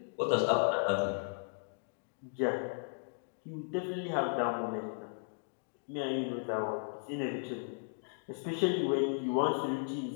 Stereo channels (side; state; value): right; silent; digital silence